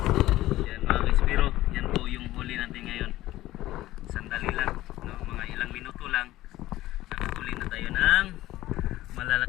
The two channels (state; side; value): quieter; right; 15.9 dB